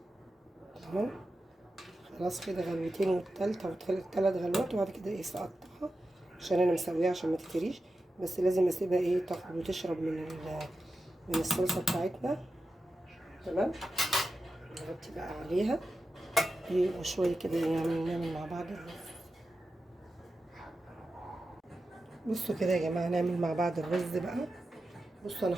تمام، خلاص كده غلوتين والتالتة والتلات غلوات، وبعد كده ايه سقطها عشان انا مسويها عشان ما تتريش. بس لازم اسيبها ايه تاخد وتشرب من الصلصة بتاعتنا تمام. نغطي بقى عليها ايه وشوية كده يعني نعمل مع بعض الرز. بصوا كده يا جماعة نعمل مع بعض الرز بقى. بصوا انا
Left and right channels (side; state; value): both; normal; correlation 0.91